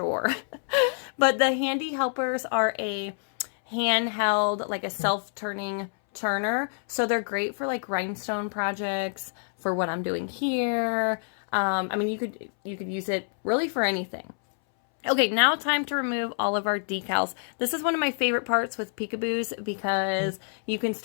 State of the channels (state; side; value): silent; right; 60 dB below the other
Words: But the handy helpers are a handheld, like a self-turning turner, so they're great for like rhinestone projects, for what I'm doing here. I mean, you could use it really for anything. Okay, now time to remove all of our decals. This is one of my favorite parts with peekaboos because you can